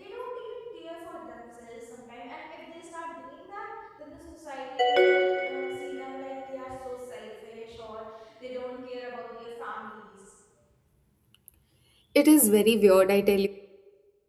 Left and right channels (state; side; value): identical; both; correlation 1.00